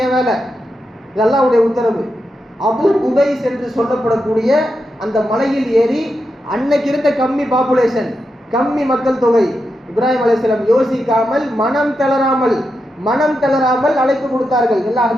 என் வேலை, இது அல்லாஹ்வுடைய உத்தரவு. அபு குபைஸ் என்று சொல்லப்படக்கூடிய அந்த மலையில் ஏறி அன்னைக்கு இருந்த கம்மி பாப்புலேஷன், கம்மி மக்கள் தொகை, இப்ராஹிம் அலைஹிஸ்ஸலாம் யோசிக்காமல் மனம் தளராமல் அழைப்பு கொடுத்தார்கள், எல்லாம்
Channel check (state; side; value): normal; both; correlation 0.87